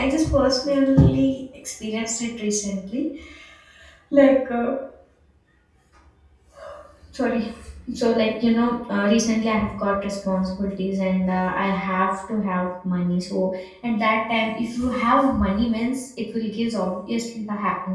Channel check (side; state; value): both; identical; correlation 1.00